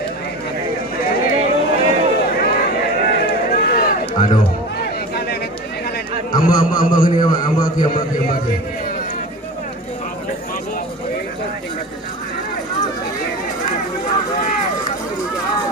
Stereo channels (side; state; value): both; normal; correlation 0.32